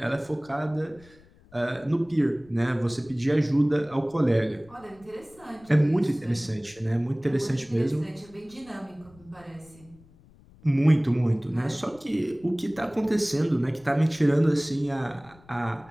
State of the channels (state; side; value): noise; left; rumble, 26 dB below the sound